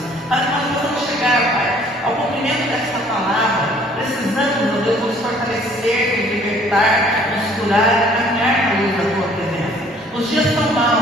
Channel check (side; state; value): both; normal; correlation 0.57